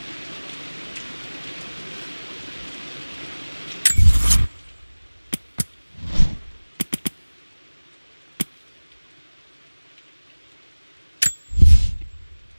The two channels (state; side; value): inverted; both; correlation -1.00